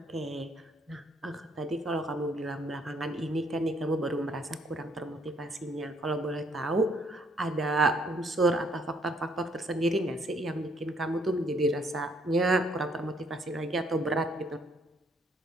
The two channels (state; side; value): normal; both; correlation 0.66